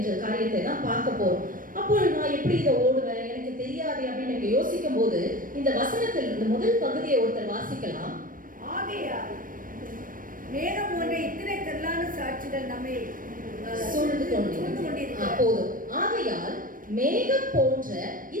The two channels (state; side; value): late; left; 0.40 ms